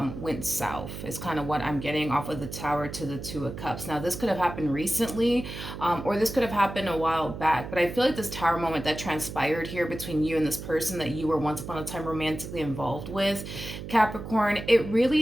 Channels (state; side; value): noise; right; hum, 9 dB below the sound